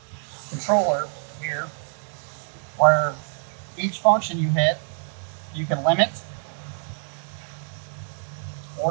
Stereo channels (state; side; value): silent; left; 61 dB below the other